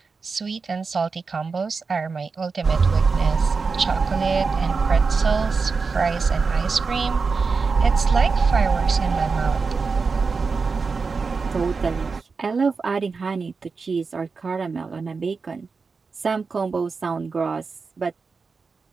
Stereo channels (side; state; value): left; quieter; 4.7 dB